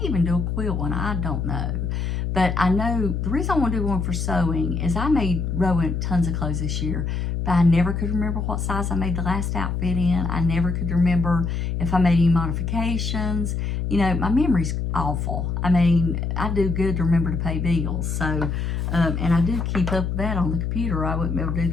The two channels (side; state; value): left; noise; hum, 1 dB below the sound